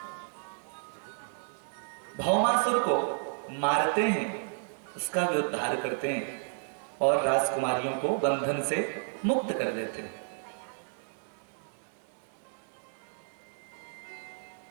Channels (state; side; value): silent; left; digital silence